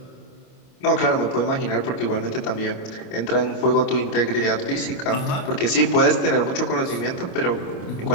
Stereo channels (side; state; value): right; late; 29 ms